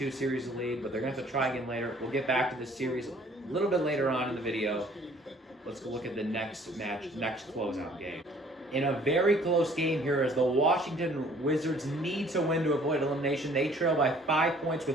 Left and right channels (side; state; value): both; normal; correlation 0.56